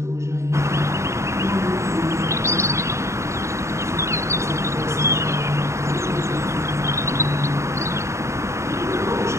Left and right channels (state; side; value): late; left; 0.14 ms